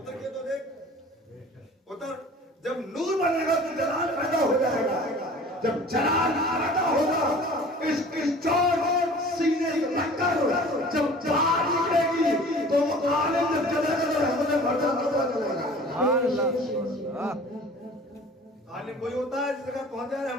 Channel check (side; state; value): both; normal; correlation 0.45